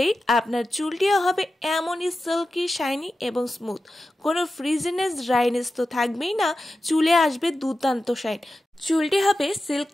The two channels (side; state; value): both; normal; correlation 0.92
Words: আপনার চুলটিও হবে এমনই সিল্কি, শাইনি এবং স্মুথ। কোনো ফ্রিজিনেস, ড্রাইনেস তো থাকবেই না, চুলে আসবে দুর্দান্ত শাইন। চুলটি হবে